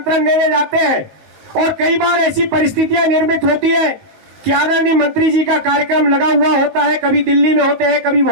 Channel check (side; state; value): left; late; 19 ms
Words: देने जाते हैं, और कई बार ऐसी परिस्थितियां निर्मित होती है कि आदरणीय मंत्री जी का कार्यक्रम लगा हुआ होता है, कभी दिल्ली में होते हैं, कभी